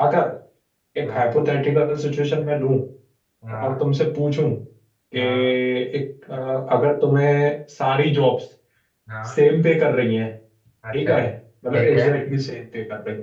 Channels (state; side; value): identical; both; correlation 1.00